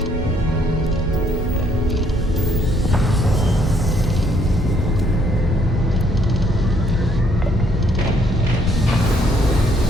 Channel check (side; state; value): both; normal; correlation 0.67